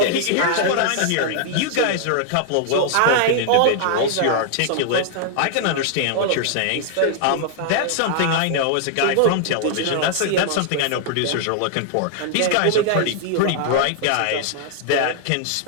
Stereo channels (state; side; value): different; both; correlation -0.01